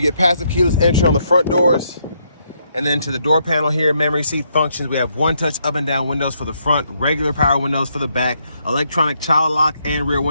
get passive keyless entry on the front doors. And then to the door panel here, memory seat functions. We have one-touch up and down windows for the front, regular power windows for the back, electronic child lock and rear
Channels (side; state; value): both; inverted; correlation -0.75